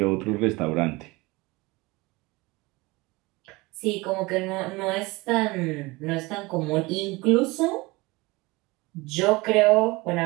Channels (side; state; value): left; quieter; 23.0 dB